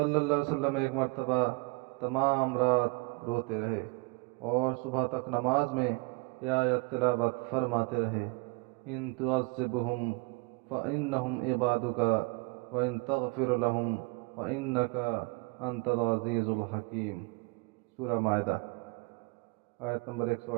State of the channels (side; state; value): left; quieter; 27.8 dB